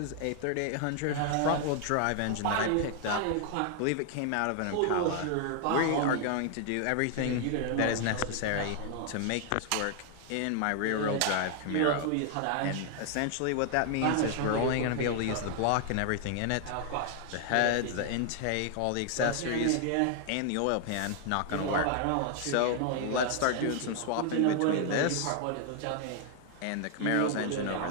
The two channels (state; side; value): different; both; correlation 0.00